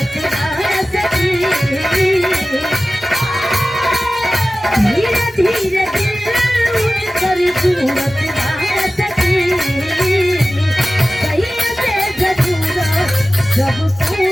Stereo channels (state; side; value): normal; both; correlation 0.96